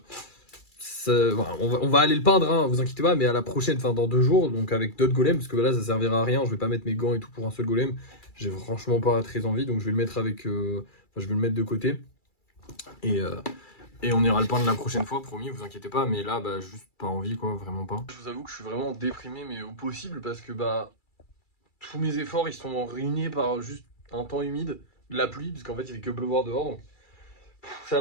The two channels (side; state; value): right; late; 2.3 ms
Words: Voilà, on va aller le peindre, hein, vous inquiétez pas, mais à la prochaine, enfin dans 2 jours, donc avec d'autres golems, parce que là ça servira à rien, je vais pas mettre mes gants et tout pour un seul golem, j'ai franchement pas très envie, donc je vais le mettre avec, je vais le mettre de côté, et, euh, et on ira le peindre la prochaine fois, promis, vous inquiétez pas, mais là, juste pas envie, quoi, vraiment pas. Je vous avoue que je suis vraiment déprimé, mais au possible, parce que tous mes efforts, ils sont ruinés par juste un temps humide, de la pluie, parce qu'en fait il fait que pleuvoir dehors, donc